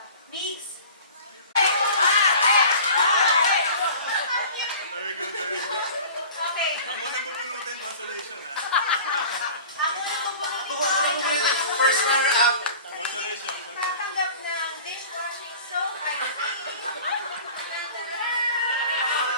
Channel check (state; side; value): inverted; both; correlation -0.42